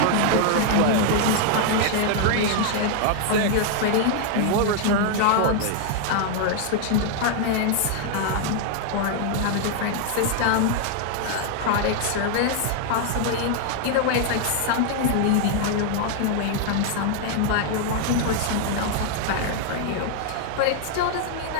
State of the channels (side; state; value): both; different; correlation 0.00